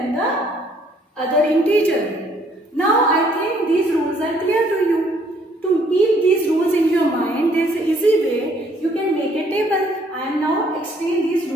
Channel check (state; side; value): normal; both; correlation 0.64